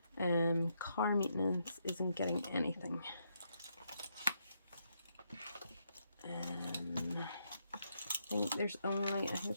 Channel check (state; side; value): inverted; both; correlation -0.79